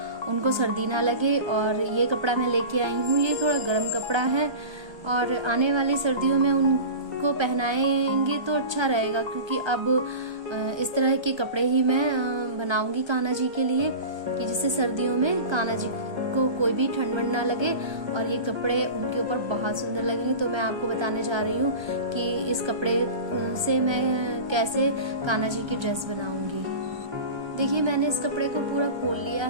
उनको सर्दी ना लगे। और ये कपड़ा मैं लेके आई हूँ, ये थोड़ा गर्म कपड़ा है और आने वाली सर्दियों में उनको पहनाएंगे तो अच्छा रहेगा, क्योंकि अब इस तरह के कपड़े ही मैं बनाऊंगी कान्हा जी के लिए कि जिससे सर्दियों में कान्हा जी को कोई भी ठंड वंड ना लगे और ये कपड़े उनके ऊपर बहुत सुंदर लगेंगे। तो मैं आपको बताने जा रही हूँ कि इस कपड़े से मैं कैसे कान्हा जी की ड्रेस बनाऊंगी। देखिए, मैंने इस कपड़े को पूरा खोल लिया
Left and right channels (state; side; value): late; left; 1.2 ms